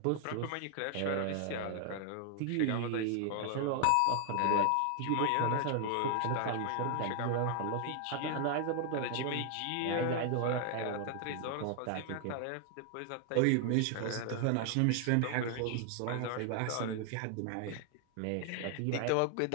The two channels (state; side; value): different; both; correlation 0.00